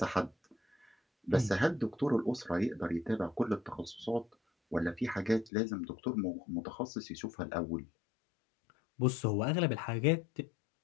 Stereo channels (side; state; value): right; drops out; at 5.5 s